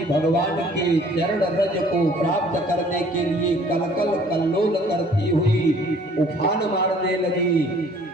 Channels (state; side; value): normal; both; correlation 0.56